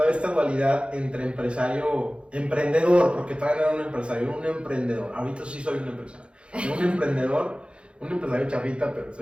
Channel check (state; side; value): late; left; 0.058 ms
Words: esta dualidad entre emprendedor, porque todavía no era un empresario, era un emprendedor. Ahorita sí soy un empresario. Un emprendedor un empresario chafita, pero